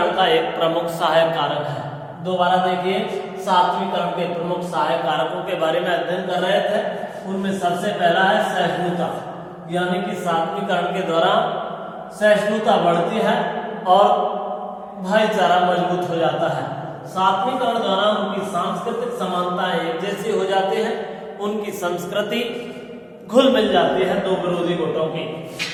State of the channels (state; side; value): identical; both; correlation 1.00